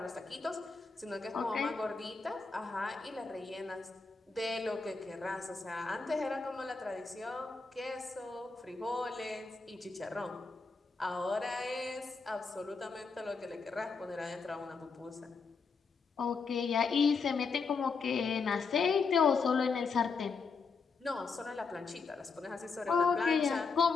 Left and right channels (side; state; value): right; quieter; 4.8 dB